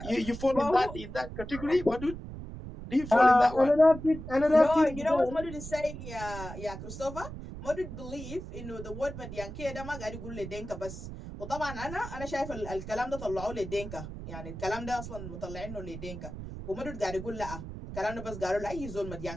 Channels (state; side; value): noise; right; rumble, 10 dB below the sound